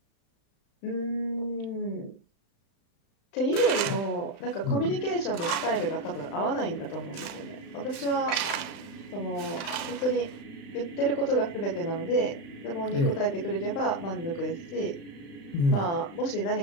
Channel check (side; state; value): right; late; 35 ms